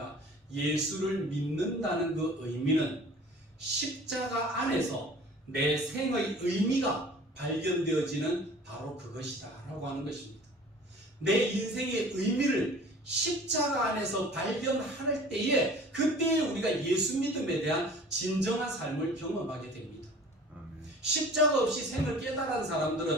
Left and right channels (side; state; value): both; normal; correlation 0.45